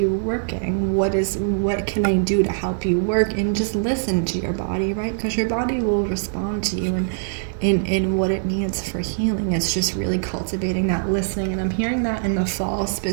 working? What can I do to help you work? And just listen to your body, right? Because your body will respond to you in what it needs for healing. It's just really cultivating that listening, and I'm hearing that in the fall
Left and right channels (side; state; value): left; silent; digital silence